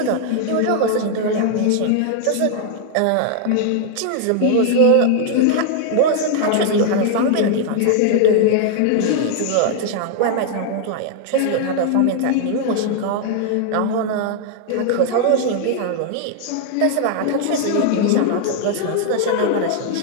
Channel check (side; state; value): both; different; correlation 0.00